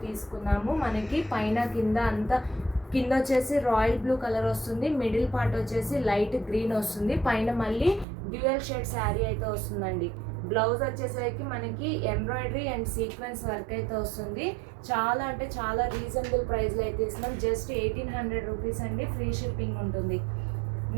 తీసుకున్నాము. మనకి పైన కింద అంతా కింద వచ్చేసి రాయల్ బ్లూ కలర్ వస్తుంది. మిడిల్ పార్ట్ వచ్చేసి లైట్ గ్రీన్ వస్తుంది. పైన మళ్ళీ డ్యూయల్ షేడ్ శారీ అయితే వస్తుందండి. బ్లౌజ్ వచ్చేసరికి మనకి ఎంబ్రాయిడరీ అండ్ సీక్వెన్స్ వర్క్ అయితే వస్తుంది. చాలా అంటే చాలా రీజనబుల్ ప్రైస్లో అయితే ఇస్తున్నాం. జస్ట్ 1800 రూపీస్ అండి. ఫ్రీ షిప్పింగ్ ఉంటుంది.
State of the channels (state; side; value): drops out; left; at 8.1 s